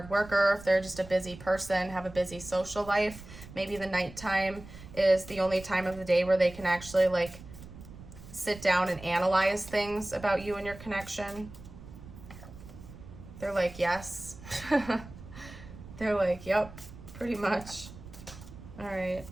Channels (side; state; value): right; noise; rumble, 16 dB below the sound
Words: worker, if they're just a busy person, have a busy social life. Maybe the nighttime is the only time of the day where they can actually like sit down and analyze things about you and your connection. They're like, yes. They're like, yep, pretty much. All right.